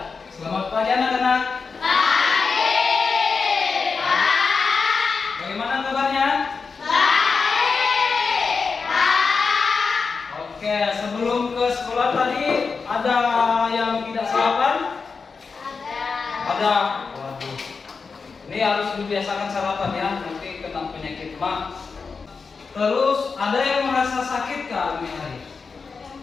selamat pagi anak-anak. Pagi, Pak. Bagaimana kabarnya? Baik, Pak. Oke, sebelum ke sekolah tadi ada yang tidak sarapan? Ada. Waduh. Ini harus dibiasakan sarapan ya, nanti kena penyakit mah. Terus ada yang merasa sakit kah ini hari?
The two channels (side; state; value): right; quieter; 4.9 dB